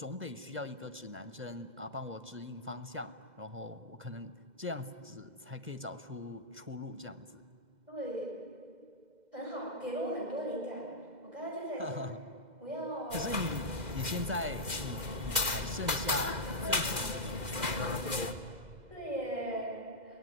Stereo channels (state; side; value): late; left; 2.0 ms